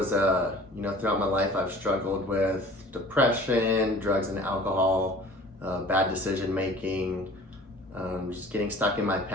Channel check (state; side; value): normal; both; correlation 0.46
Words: throughout my life I've struggled with depression, drugs and alcohol, bad decision making, just getting stuck in my